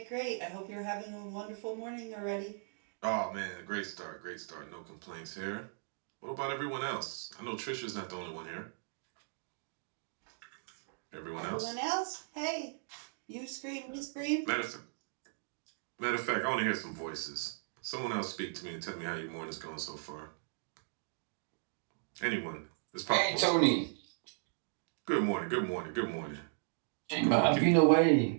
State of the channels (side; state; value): left; silent; digital silence